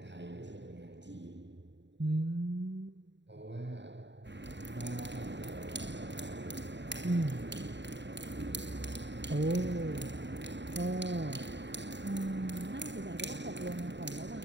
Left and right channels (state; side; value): late; left; 0.52 ms